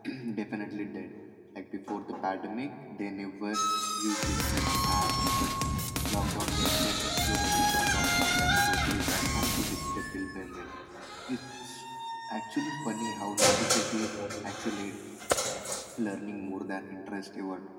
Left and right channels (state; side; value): identical; both; correlation 1.00